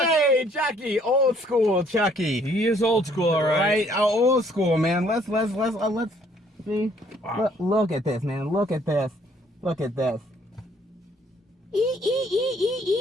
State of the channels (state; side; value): normal; both; correlation 0.63